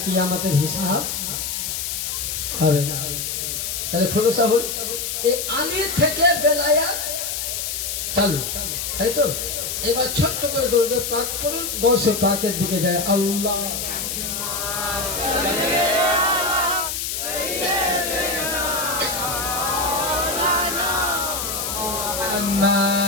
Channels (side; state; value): left; noise; hiss, 3 dB below the sound